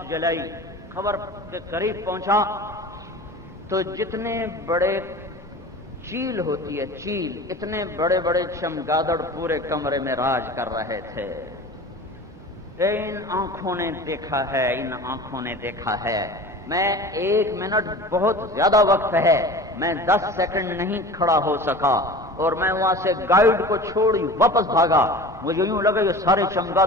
جلائی، قبر کے قریب پہنچا تو جتنے بڑے چیل ہوتی ہے چیل، اتنے بڑے بڑے چمگادڑ پورے کمرے میں راج کر رہے تھے. ان آنکھوں نے دیکھا ہے، ان آنکھوں نے دیکھا ہے. میں 1 منٹ بہت زیادہ وقت ہے، میں 10 سیکنڈ نہیں کھڑا ہو سکا اور میں وہاں سے گائیڈ کو چھوڑی واپس بھاگا. مجھے یوں لگا یہ سارے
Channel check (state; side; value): normal; both; correlation 0.37